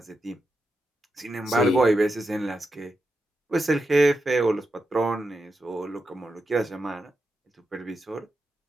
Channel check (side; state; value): both; normal; correlation 0.87